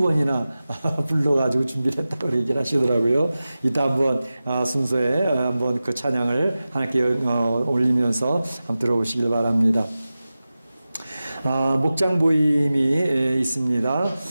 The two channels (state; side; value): inverted; both; correlation -0.95